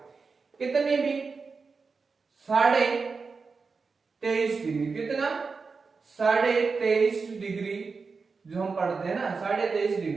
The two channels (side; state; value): left; quieter; 4.7 dB